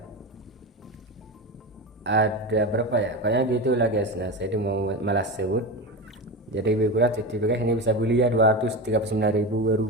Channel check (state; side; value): normal; both; correlation 0.22